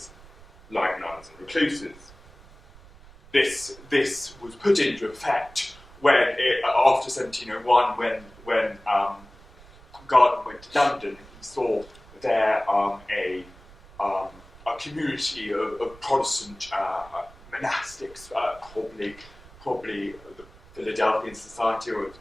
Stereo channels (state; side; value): noise; right; rumble, 22 dB below the sound